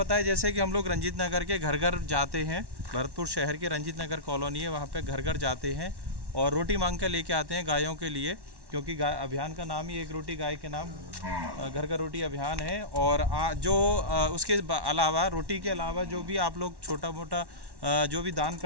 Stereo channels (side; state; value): left; late; 1.1 ms